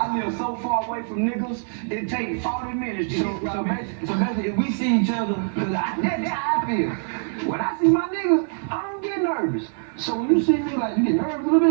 live so far away from niggas, it takes 40 minutes to so basically, if we see each other, cause that's how I feel. When I see my niggas, I don't get nervous. So when you see me, like, you get nervous a little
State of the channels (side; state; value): left; silent; 63 dB below the other